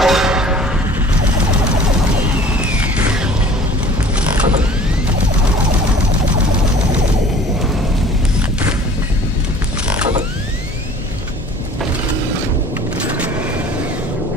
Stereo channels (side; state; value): both; normal; correlation 0.48